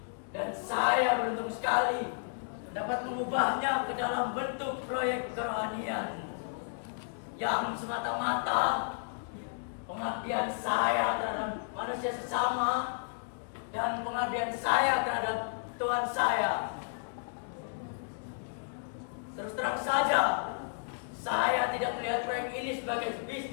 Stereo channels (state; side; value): silent; right; digital silence